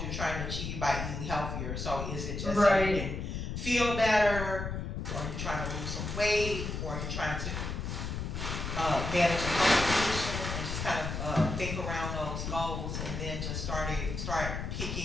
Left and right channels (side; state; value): left; noise; rumble, 4 dB below the sound